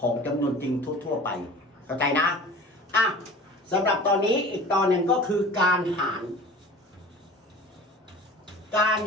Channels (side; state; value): both; normal; correlation 0.41